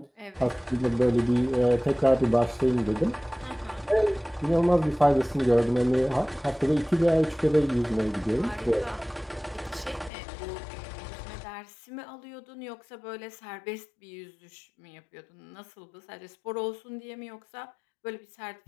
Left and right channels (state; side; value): drops out; right; at 10.1 s